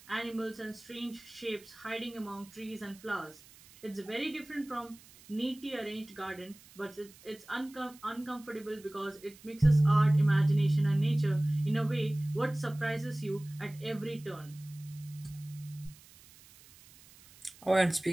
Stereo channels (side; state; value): right; noise; hiss, 23 dB below the sound